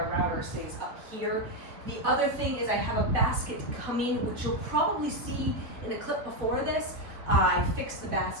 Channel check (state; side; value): late; left; 4.1 ms